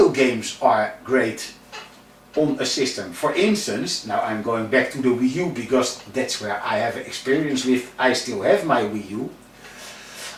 games are great on a system. For instance, now I'm going back to the Wii U because that's where I have experience with, I still have my Wii U.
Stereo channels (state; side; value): identical; both; correlation 1.00